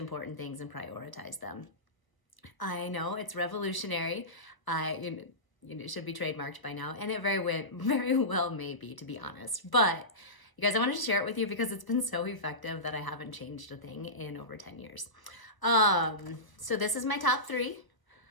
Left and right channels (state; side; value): late; right; 1.0 ms